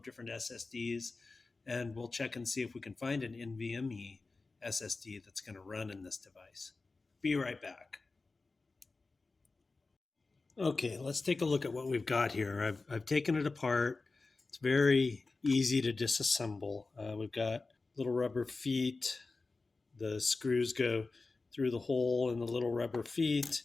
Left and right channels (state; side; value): quieter; right; 3.7 dB